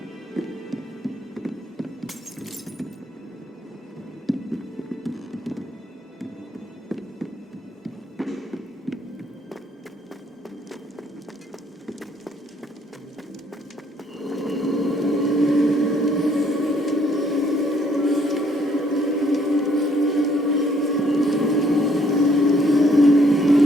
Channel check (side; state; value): both; normal; correlation 0.66